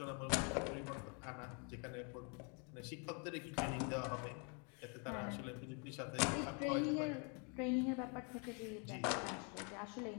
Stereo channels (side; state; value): right; quieter; 36.7 dB